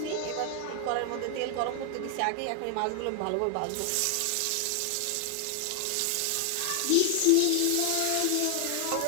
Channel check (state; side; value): different; both; correlation 0.00